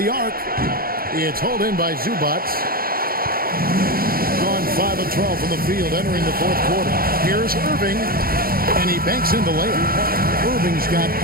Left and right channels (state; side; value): late; left; 0.43 ms